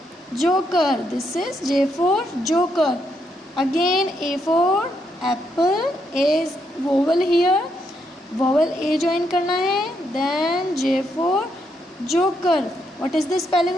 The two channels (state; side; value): normal; both; correlation 0.78